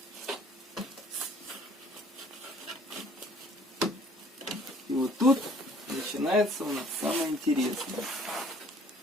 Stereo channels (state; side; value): normal; both; correlation 0.57